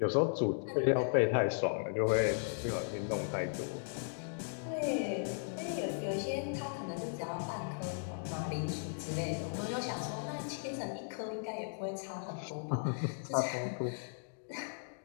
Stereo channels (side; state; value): right; silent; digital silence